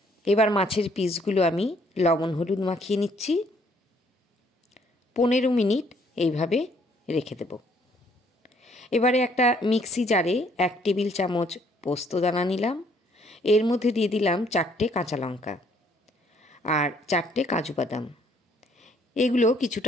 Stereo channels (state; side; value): normal; both; correlation 0.65